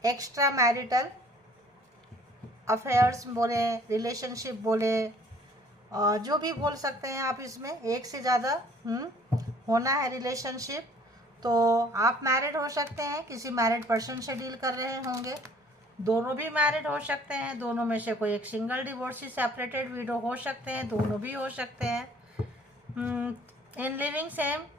एक्स्ट्रा मैरिटल अफेयर्स बोले, रिलेशनशिप बोले, जो भी बोल सकते हैं आप, इसमें एक से ज़्यादा होना है रिलेशनशिप। तो आप मैरिड हो सकते हैं, किसी मैरिड पर्सन से डील कर रहे होंगे, दोनों भी मैरिड हो सकते हैं, दोनों में से कोई एक सिंगल डिवोर्सी सेपरेटेड विडो हो सकते हैं, दोनों भी हो सकते हैं। In living same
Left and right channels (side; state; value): both; normal; correlation 0.56